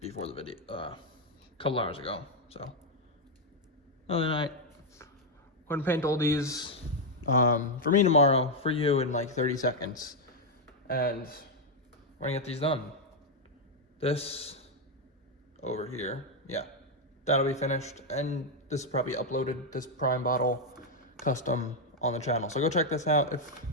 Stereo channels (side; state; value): both; normal; correlation 0.01